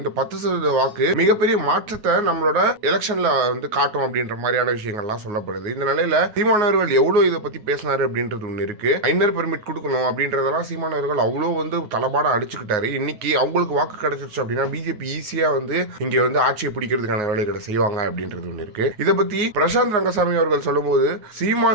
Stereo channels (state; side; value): late; left; 9.5 ms